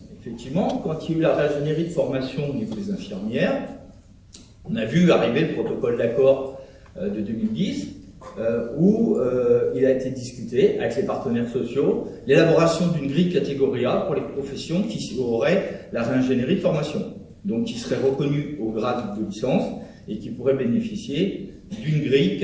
effectivement, quand il y a eu la réingénierie de formation au niveau des infirmières, on a vu arriver le protocole d'accord de 2010 où il a été discuté avec les partenaires sociaux l'élaboration d'une grille catégorie A pour les professions qui auraient la réingénierie de formation, donc qui seraient reconnues au grade de licence et qui pourraient bénéficier d'une grille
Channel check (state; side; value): identical; both; correlation 1.00